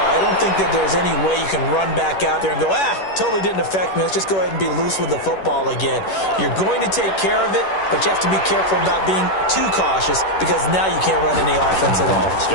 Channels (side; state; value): right; late; 10 ms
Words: I don't think that there's any way you can run back out there and go, totally didn't affect me. Let's just go ahead and be loose with the football again. You're going to take care of it, but you have to be careful about being too cautious because now you can't run any offense at all.